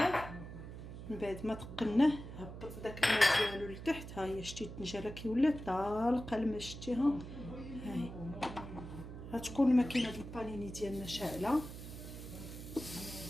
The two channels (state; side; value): noise; right; hum, 11 dB below the sound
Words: من بعد ما تقلناه هبط داك الماء ديالو لتحت. ها هي شتي الطنجره كي ولات طالقه الماء شتيها. هاي غتكون ماكينه البانيني ديالنا شاعله.